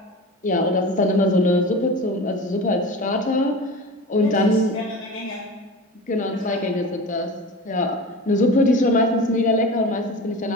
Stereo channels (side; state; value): both; normal; correlation 0.33